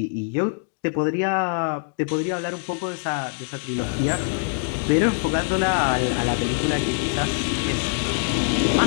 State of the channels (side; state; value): right; silent; digital silence